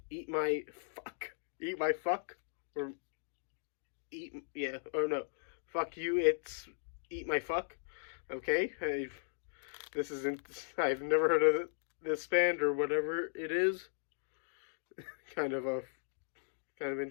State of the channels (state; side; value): silent; right; digital silence